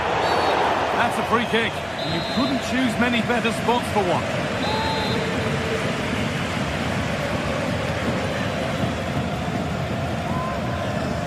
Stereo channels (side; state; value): both; identical; correlation 1.00